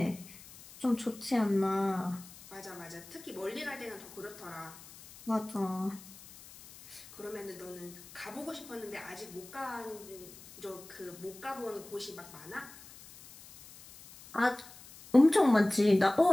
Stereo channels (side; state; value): left; noise; hiss, 19 dB below the sound